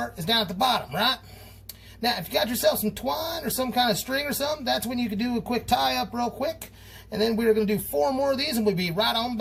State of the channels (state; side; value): identical; both; correlation 1.00